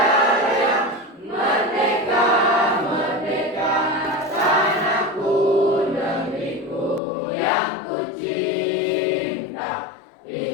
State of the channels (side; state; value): right; drops out; at 7.0 s